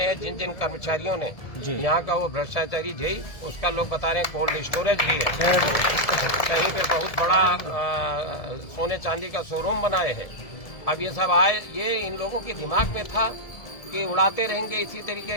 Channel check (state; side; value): late; right; 1.7 ms